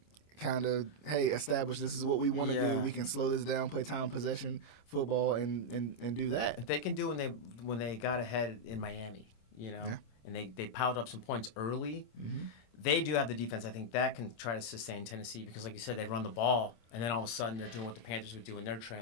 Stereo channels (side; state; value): right; late; 26 ms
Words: kind of, hey, establish this is what we want to do. We can slow this down, play time possession football, and do that. If they can do when they got ahead in Miami, and they piled up some points early, they do have the defense. I think that can try to sustain Tennessee because, like you said, they run the ball, and then all of a sudden they're doing what the Panthers would do when they're